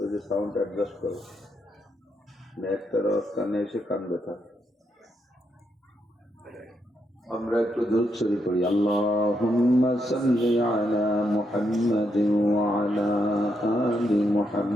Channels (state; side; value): normal; both; correlation 0.80